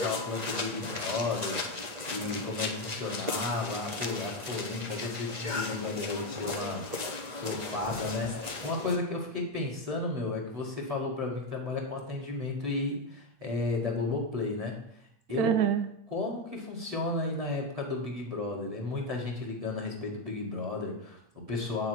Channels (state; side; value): late; left; 8.3 ms